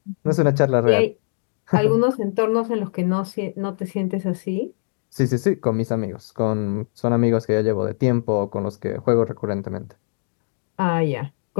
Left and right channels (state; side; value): silent; right; digital silence